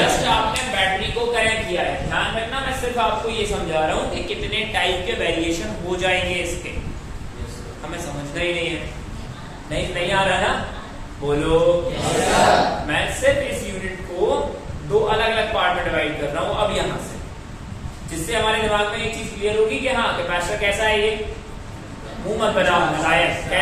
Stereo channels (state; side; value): identical; both; correlation 1.00